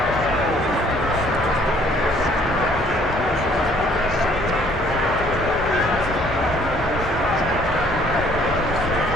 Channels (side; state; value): both; normal; correlation 0.60